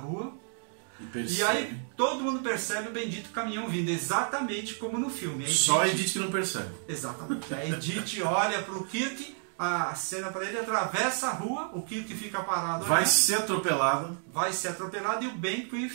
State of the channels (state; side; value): silent; left; 58 dB below the other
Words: e aí todo mundo percebe o bendito caminhão vindo, exatamente como no filme. Só a Edith que não percebe. Exatamente. A Edith olha para o Kirk, a cena para ele, atravessa a rua, o Kirk fica parado. Vai ser atropelado. E o Benquith